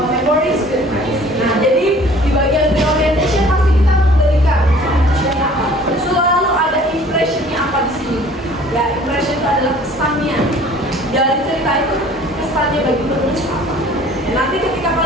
memories with friends. Nah, jadi di bagian reorientation pasti kita memberikan impression apa. Selalu ada impressionnya apa di sini. Ya, impression itu adalah kesannya dari cerita itu, kesannya bagi penulis apa. Dan nanti ketika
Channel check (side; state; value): both; normal; correlation 0.51